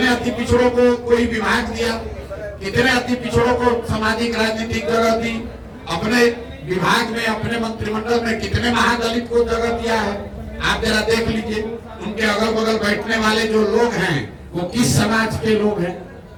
अति पिछड़ों को कोई विभाग दिया? कितने अति पिछड़ों को सामाजिक राजनीतिक जगह दी, अपने विभाग में अपने मंत्रिमंडल में कितने महादलित को जगह दिया है। आप जरा देख लीजिए, उनके अगल बगल बैठने वाले जो लोग हैं वो किस समाज के लोग हैं,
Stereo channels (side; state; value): both; identical; correlation 1.00